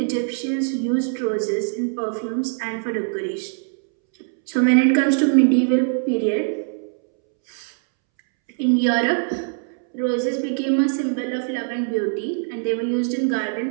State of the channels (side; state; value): left; silent; 64 dB below the other